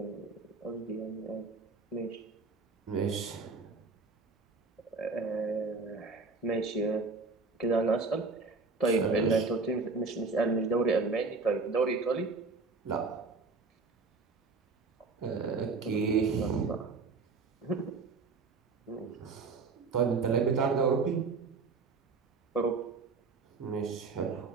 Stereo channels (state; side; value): quieter; left; 4.2 dB